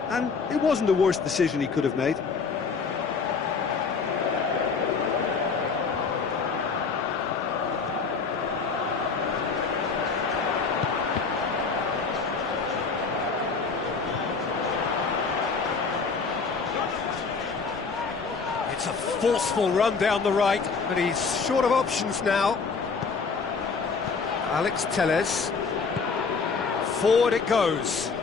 and it wasn't the worst decision he could have made. It's a forceful run down the right, but he's short of options now. Alex Telles. Forward it goes.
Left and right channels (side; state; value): right; quieter; 5.0 dB